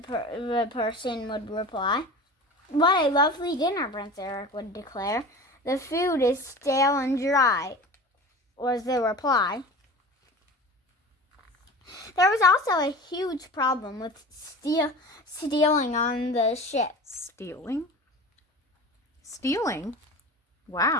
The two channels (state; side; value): normal; both; correlation 0.35